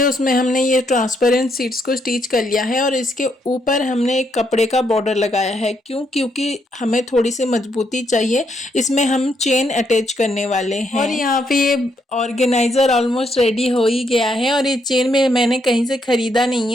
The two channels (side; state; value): both; normal; correlation 0.76